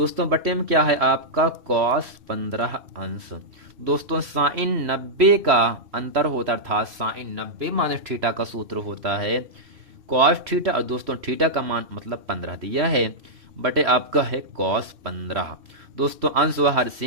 बटे में क्या है आपका cos 15 अंश। दोस्तों साइन 90 का अंतर होता है, अर्थात साइन 90 माइनस थीटा का सूत्र होता है cos थीटा, और दोस्तों थीटा का मान मतलब 15 दिया है, बटे आपका है cos 15। दोस्तों अंश व हर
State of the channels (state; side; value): late; left; 3.1 ms